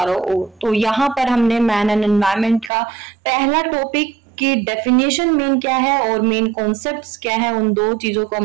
ओर। तो यहाँ पर हमने मैन एंड एनवायरनमेंट का पहला टॉपिक की डेफिनेशन मेन क्या है और मेन कॉन्सेप्ट्स क्या है, उन दो चीजों को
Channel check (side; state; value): left; drops out; at 2.7 s